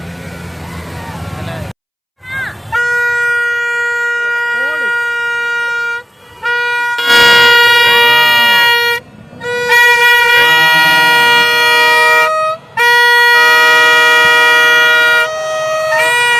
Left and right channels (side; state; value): both; identical; correlation 1.00